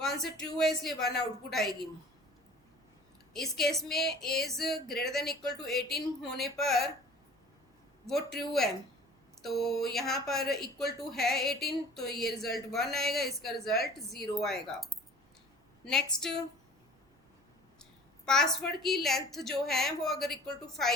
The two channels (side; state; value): both; normal; correlation 0.46